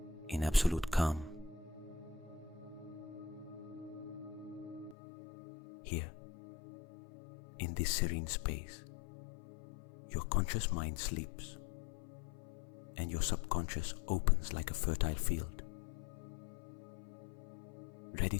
in absolute calm. Here, in this serene space, your conscious mind sleeps and your subconscious opens like a fertile field, ready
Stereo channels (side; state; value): right; drops out; at 5.0 s